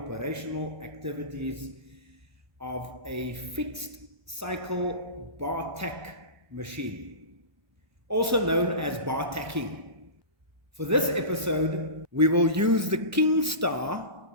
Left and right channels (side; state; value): left; late; 1.1 ms